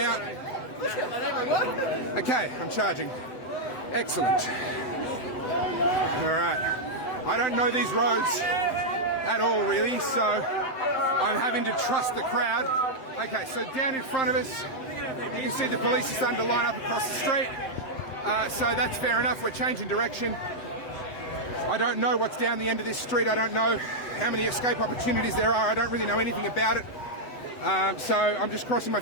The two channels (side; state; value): right; late; 8.0 ms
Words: Okay, I'm charging. Excellent. Alright. I don't know these roads at all really, so I'm having to trust the crowd. Okay, so down in front of us, you can see the police are starting to line up across the street. So that's fair enough, we're changing direction. I don't know what's down the end of this street. I don't know how many escape opportunities there are. I don't really know anything about it. So I'm just crossing my